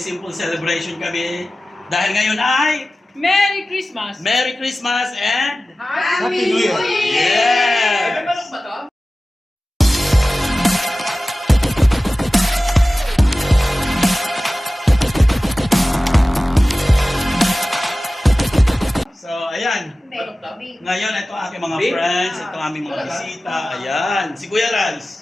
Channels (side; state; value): both; normal; correlation 0.96